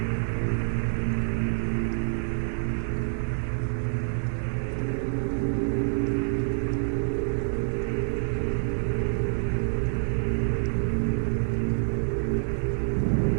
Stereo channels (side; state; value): left; silent; digital silence